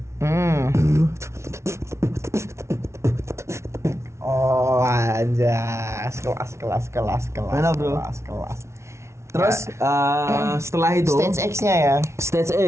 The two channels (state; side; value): late; left; 0.13 ms